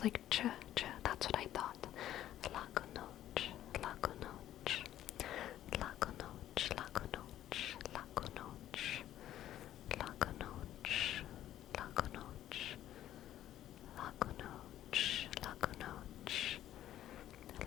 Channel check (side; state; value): right; quieter; 12.4 dB